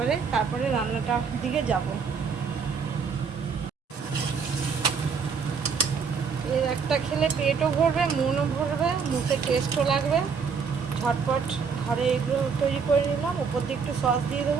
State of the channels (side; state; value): left; quieter; 5.8 dB